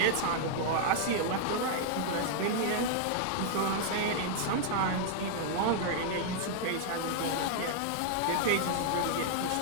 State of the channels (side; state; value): both; different; correlation 0.00